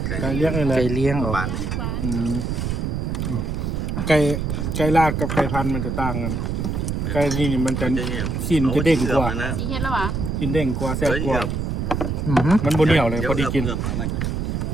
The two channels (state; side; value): noise; right; rumble, 1 dB below the sound